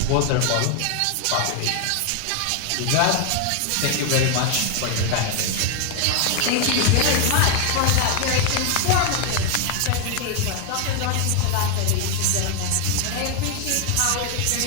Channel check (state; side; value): different; both; correlation 0.01